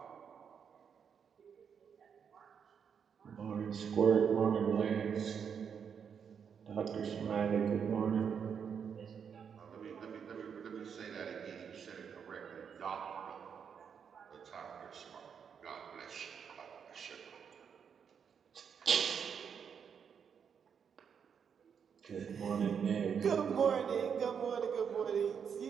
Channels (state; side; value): quieter; left; 7.1 dB